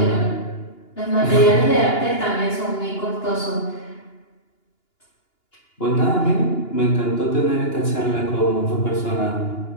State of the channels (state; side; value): late; right; 2.9 ms